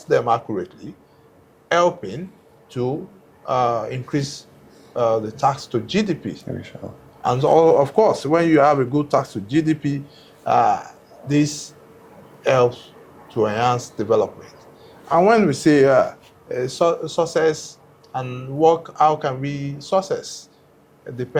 them accurately, helping to increase the tax to GDP. And so, of course, when you have a good tax to GDP, this helps to enhance development. And when we say success and work, how can we success? It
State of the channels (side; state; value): both; identical; correlation 1.00